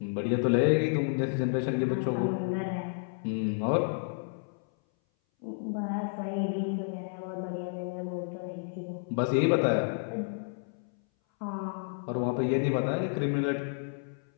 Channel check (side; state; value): right; silent; 57 dB below the other